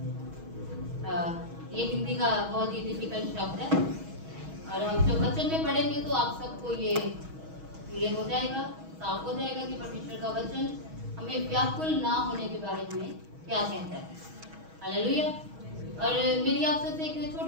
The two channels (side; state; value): left; late; 6.3 ms